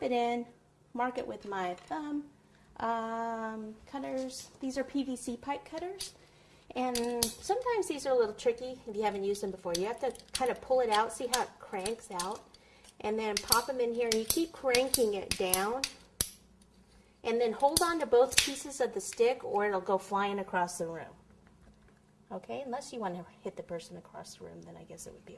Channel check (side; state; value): both; identical; correlation 1.00